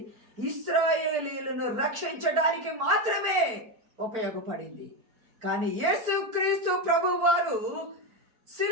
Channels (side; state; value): left; late; 4.5 ms